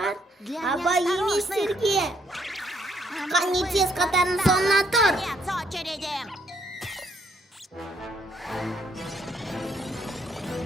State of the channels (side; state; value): both; normal; correlation 0.71